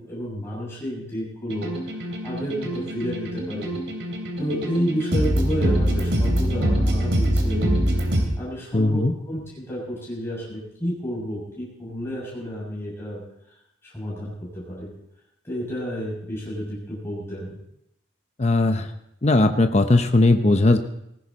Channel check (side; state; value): both; normal; correlation 0.82